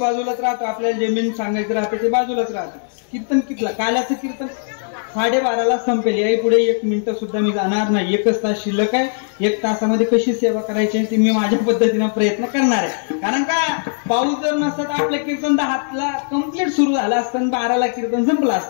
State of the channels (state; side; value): silent; right; 67 dB below the other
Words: राहतो, आपल्याला जे मेन सांगायचं राहतं ते बाजूलाच राहतं. कीर्तन कितला, काल्याचं कीर्तन 12:30ला संपेल. याही पुढे 1 मिनिटं सुद्धा मी जाणार नाही. 1 तास शिल्लक आहे. 1 तासामध्ये कशी सेवा करायची ते मी माझ्या पद्धतीनं प्रयत्न करणार आहे. कारण का पाऊस जर नसता तर आपलं कीर्तन 10ला कम्प्लीट सुरू झालं असतं, 12ला कीर्तन संपलं